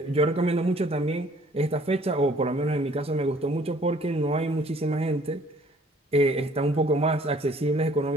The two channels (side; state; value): both; normal; correlation 0.57